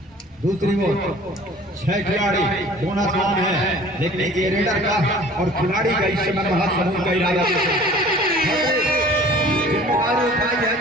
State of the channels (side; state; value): both; normal; correlation 0.48